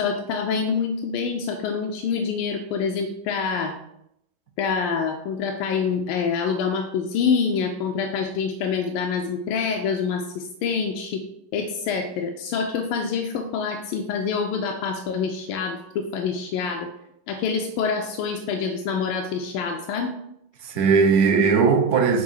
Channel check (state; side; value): late; right; 11 ms